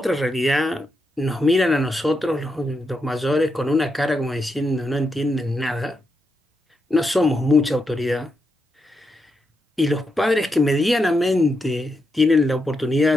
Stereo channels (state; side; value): normal; both; correlation 0.84